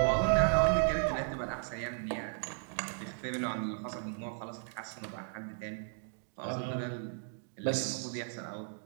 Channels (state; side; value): silent; left; 54 dB below the other